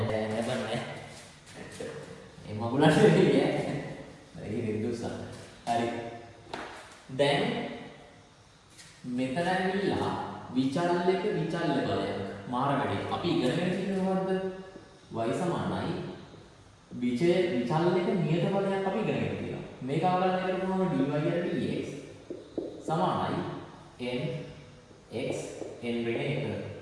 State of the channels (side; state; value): both; identical; correlation 1.00